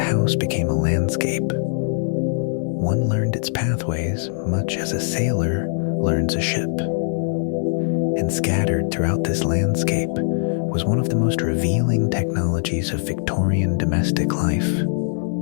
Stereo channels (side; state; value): right; silent; 65 dB below the other